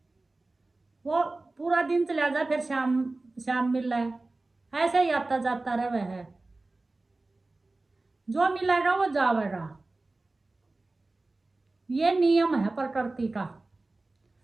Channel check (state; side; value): quieter; left; 3.2 dB